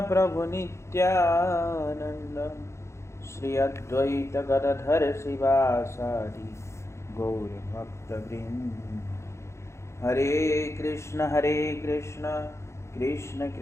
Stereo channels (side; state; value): right; late; 0.13 ms